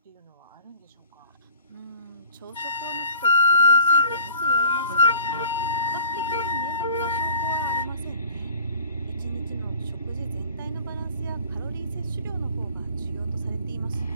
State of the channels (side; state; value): both; inverted; correlation -0.48